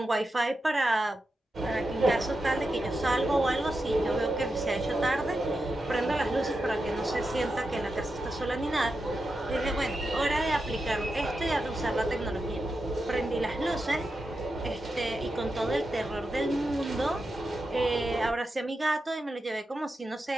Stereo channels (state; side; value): normal; both; correlation 0.89